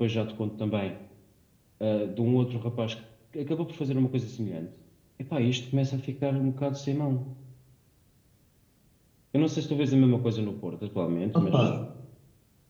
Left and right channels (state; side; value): identical; both; correlation 1.00